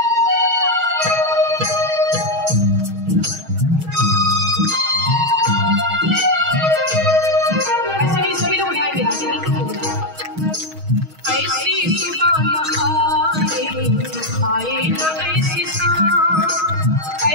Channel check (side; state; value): left; late; 6.3 ms